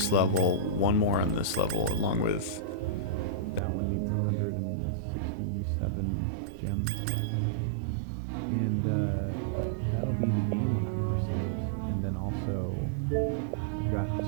level, 1 more on this level, along with that one needs 167 gems. And that'll be the game 100%, and then also I've got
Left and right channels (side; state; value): left; drops out; at 3.6 s